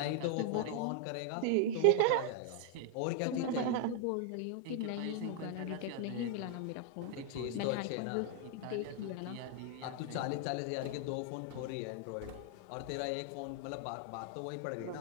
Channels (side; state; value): both; different; correlation 0.00